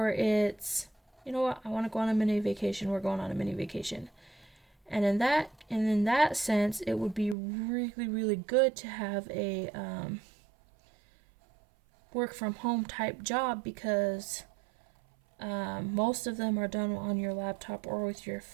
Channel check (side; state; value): left; drops out; at 7.4 s